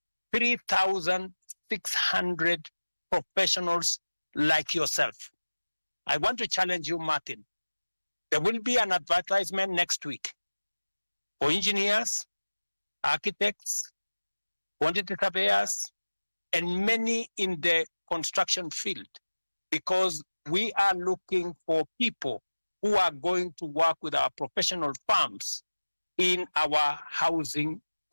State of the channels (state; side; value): inverted; both; correlation -1.00